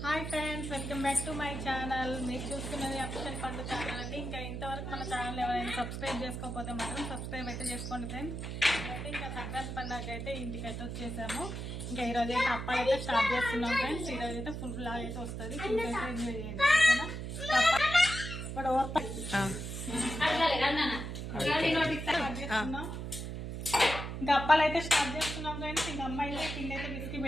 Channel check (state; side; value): noise; right; hum, 6 dB below the sound